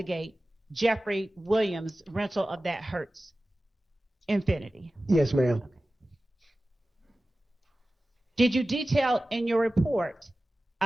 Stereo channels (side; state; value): both; normal; correlation 0.96